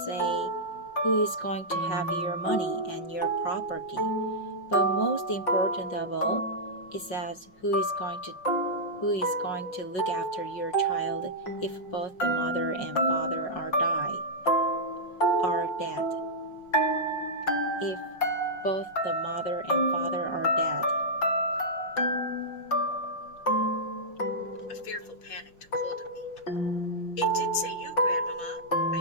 say who is going to have your money and your property. But most important of all, it says who is going to look after your child if both the mother and father are dead. If both the mother and father are dead. A fearful panic took hold of me. It did say you, Grandmama,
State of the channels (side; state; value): right; late; 5.5 ms